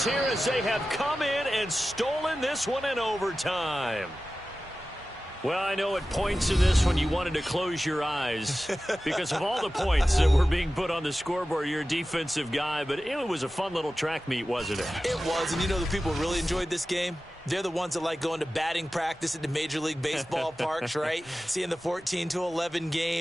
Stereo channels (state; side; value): normal; both; correlation 0.95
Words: here as they have come in and stolen this one in overtime. Well, I know at points in this one you wanted to close your eyes because of all the points that were being put on the scoreboard. You're a defensive guy, but it was a fun little track meet, wasn't it? It was, and you know the people who really enjoyed this game? They're the ones that like going to batting practice at the Major League Baseball parks, right? Seeing the 14-11